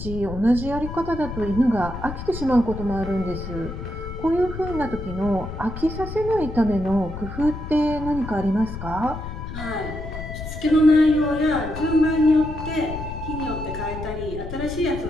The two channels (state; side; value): noise; left; rumble, 8 dB below the sound